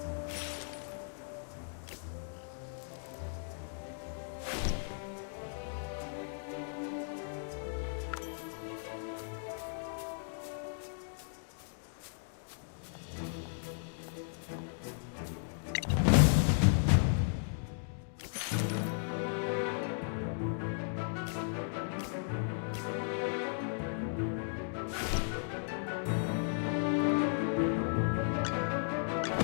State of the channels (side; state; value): right; silent; digital silence